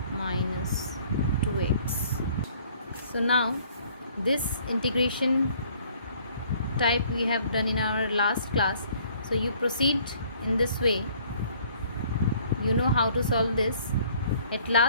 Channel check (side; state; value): both; inverted; correlation -0.58